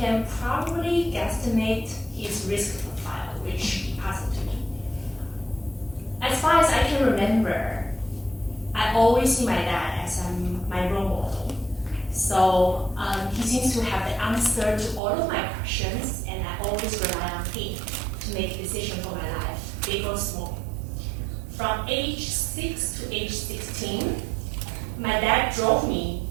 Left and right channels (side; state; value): left; drops out; at 15.0 s